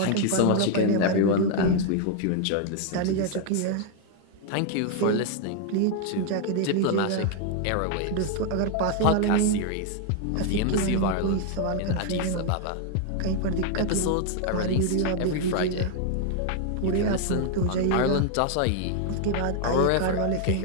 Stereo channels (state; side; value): different; both; correlation 0.00